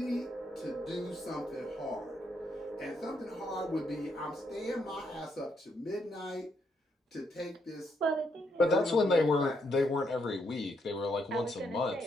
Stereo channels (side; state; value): both; normal; correlation 0.76